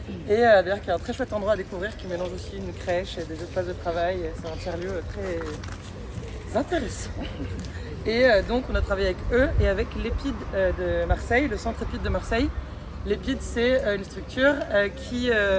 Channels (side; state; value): both; identical; correlation 1.00